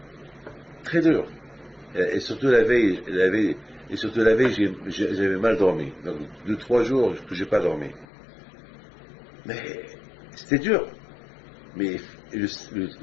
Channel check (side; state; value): right; drops out; at 8.1 s